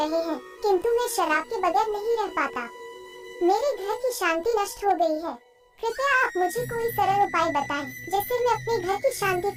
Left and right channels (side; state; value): both; identical; correlation 1.00